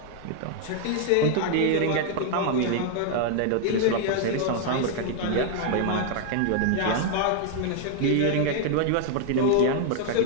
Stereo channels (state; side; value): different; both; correlation 0.00